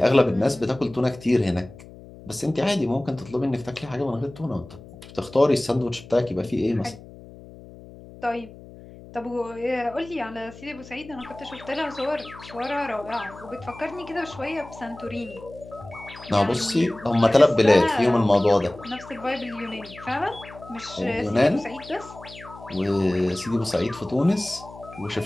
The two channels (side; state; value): left; noise; hum, 18 dB below the sound